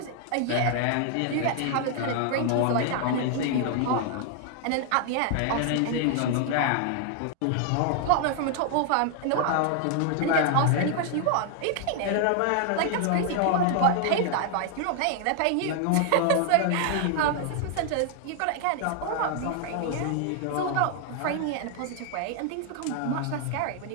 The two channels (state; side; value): different; both; correlation 0.00